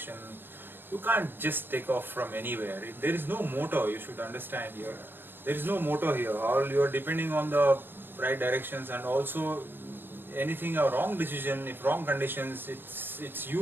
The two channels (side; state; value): left; late; 0.099 ms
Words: You can't just take off from anywhere. There is no motor, you should understand here. There is no motor here. All you are depending on the right directions, and also anything a wrong decision, if wrong conditions, it's